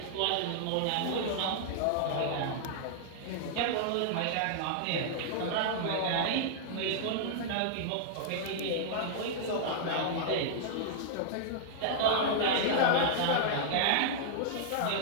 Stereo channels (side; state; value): both; different; correlation -0.01